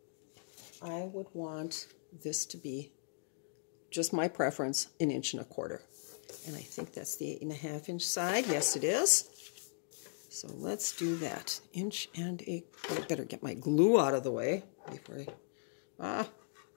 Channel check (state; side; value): silent; right; digital silence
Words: I would want this to be, just my preference, 1.25 inches. And I think that's the 8.5 inch side. Yes, it is. So let's do that. 1 1/8 inches. I better get my glue out of the way before I...